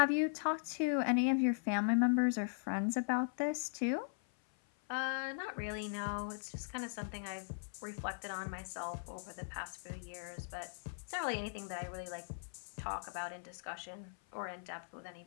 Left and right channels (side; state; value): right; silent; 52 dB below the other